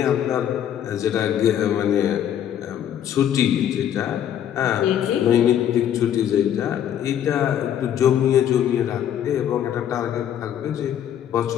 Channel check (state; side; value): quieter; right; 10.1 dB